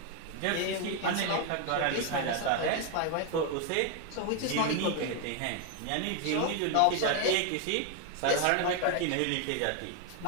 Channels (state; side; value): different; both; correlation 0.01